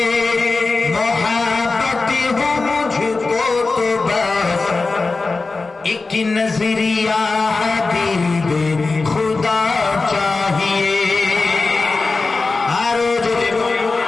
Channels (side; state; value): right; quieter; 3.8 dB